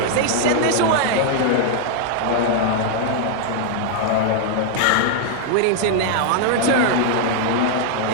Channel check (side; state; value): both; different; correlation 0.00